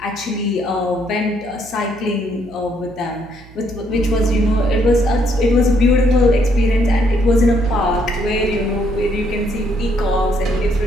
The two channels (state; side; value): noise; right; hum, 22 dB below the sound